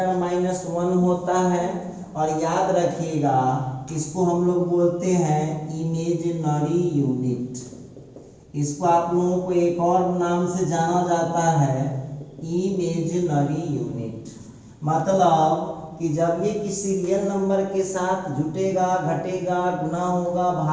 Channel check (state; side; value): identical; both; correlation 1.00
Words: होता है, और याद रखिएगा इसको हम लोग बोलते हैं इमेजिनरी यूनिट। इसको आप लोगों को एक और नाम से जाना जाता है इमेजिनरी यूनिट। मतलब कि जब ये किसी रियल नंबर के साथ जुटेगा, घटेगा, गुना होगा,